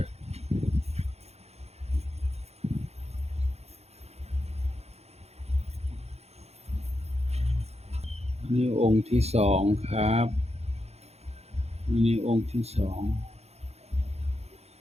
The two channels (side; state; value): left; late; 0.31 ms